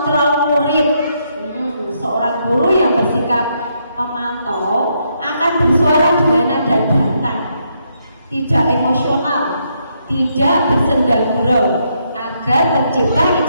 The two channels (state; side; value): inverted; both; correlation -0.77